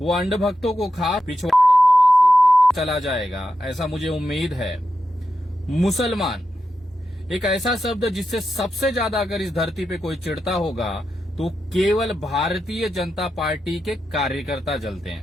अंधभक्तों को खा पिछवाड़े बवासीर देकर चला जाएगा, ऐसा मुझे उम्मीद है। मुसलमान एक ऐसा शब्द जिससे सबसे ज्यादा अगर इस धरती पे कोई चिढ़ता होगा तो केवल भारतीय जनता पार्टी के कार्यकर्ता जलते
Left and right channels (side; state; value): both; normal; correlation 0.88